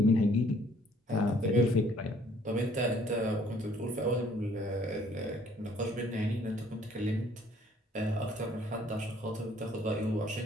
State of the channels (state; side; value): normal; both; correlation 0.60